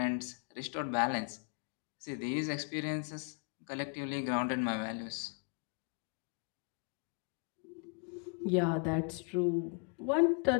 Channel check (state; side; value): quieter; right; 39.8 dB